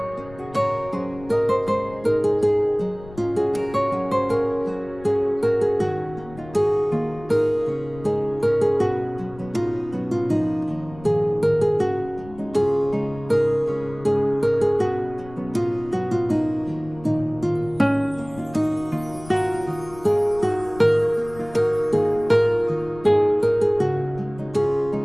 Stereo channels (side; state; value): left; noise; rumble, 19 dB below the sound